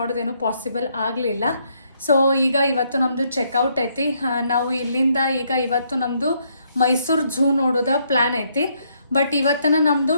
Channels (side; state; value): both; inverted; correlation -0.73